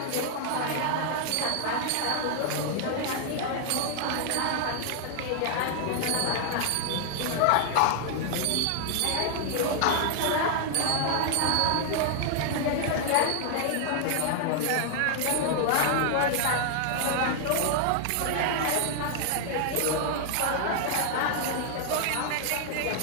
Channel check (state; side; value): different; both; correlation 0.00